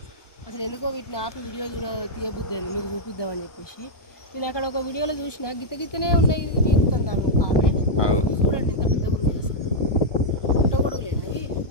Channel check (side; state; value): right; late; 1.1 ms